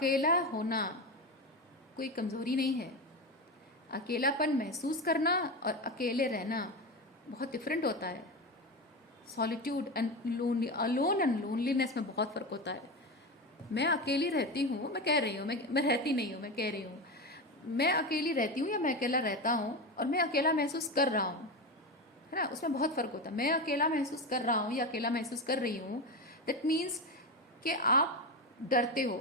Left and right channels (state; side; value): normal; both; correlation 0.19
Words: होना कोई कमज़ोरी नहीं है। अकेलापन महसूस करना और अकेले रहना बहुत डिफरेंट होता है। Solitude and lonely, alone and loneliness में बहुत फ़र्क होता है। मैं अकेली रहती हूँ, मैं कह रही हूँ, मैं रहती नहीं हूँ, मैं कह रही हूँ, मैं अकेली रहती हूँ या मैं अकेला रहता हूँ और मैं अकेला महसूस कर रहा हूँ, है ना, उसमें बहुत फर्क होता है। मैं अकेला महसूस कर रहा हूँ या अकेला महसूस कर रही हूँ, दैट मीन्स कि आप डरते हो,